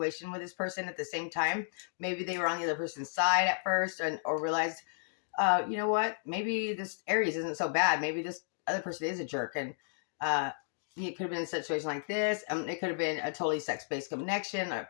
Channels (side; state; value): right; silent; digital silence